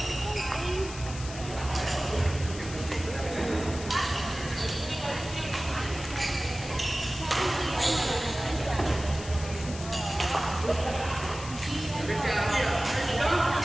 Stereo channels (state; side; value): noise; left; hiss, 12 dB below the sound